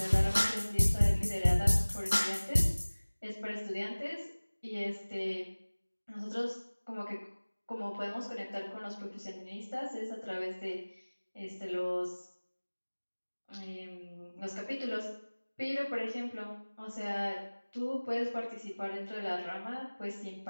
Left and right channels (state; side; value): inverted; both; correlation -1.00